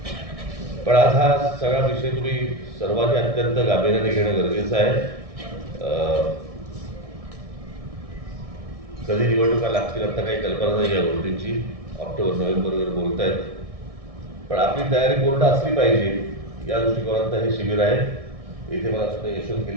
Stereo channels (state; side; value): late; left; 1.6 ms